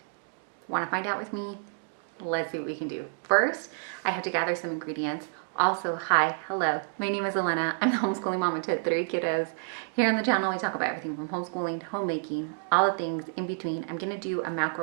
Want to find out with me? Let's see what we can do. First, I have to gather some ingredients. Also, hi, hello, my name is Elena. I'm the homeschooling mama to 3 kiddos. Here on the channel, we talk about everything from homeschooling to homemaking, all the things in between. I'm gonna do a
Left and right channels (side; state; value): left; silent; digital silence